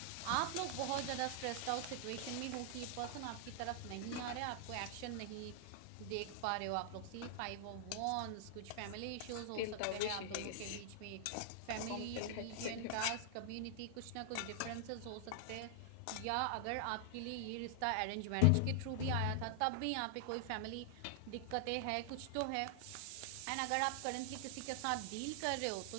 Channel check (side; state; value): both; different; correlation 0.00